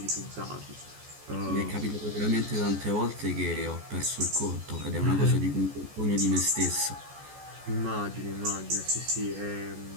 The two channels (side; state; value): left; late; 14 ms